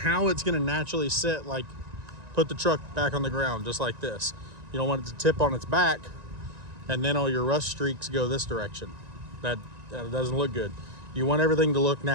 it's going to naturally sit, like put the truck back on the ground just like this. You don't want it to tip on its back and then all your rust streaks go this direction. That doesn't look good. You want everything to look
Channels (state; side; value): late; left; 1.9 ms